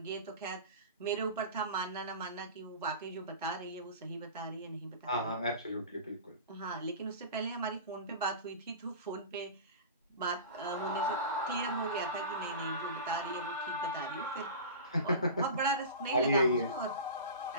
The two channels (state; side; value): inverted; both; correlation -0.32